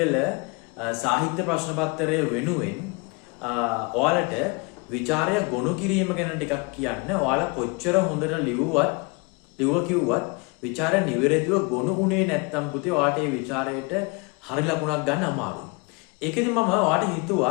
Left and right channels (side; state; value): right; quieter; 29.2 dB